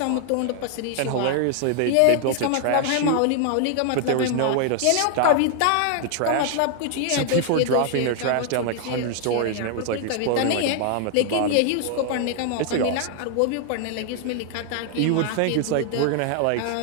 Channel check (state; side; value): different; both; correlation 0.00